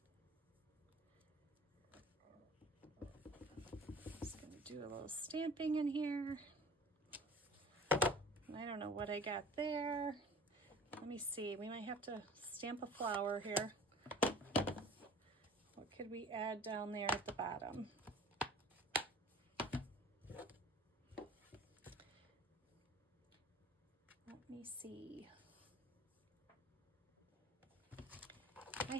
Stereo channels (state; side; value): normal; both; correlation 0.43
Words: just going to do a little stamping in here. I don't know what I got there. Let me see. We might have to stamp a flower here. What could we add down there at the bottom? Let me see. I